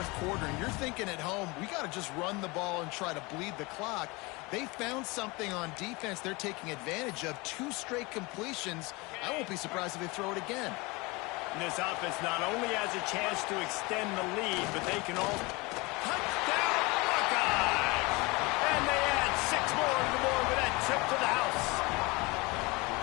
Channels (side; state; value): right; quieter; 25.0 dB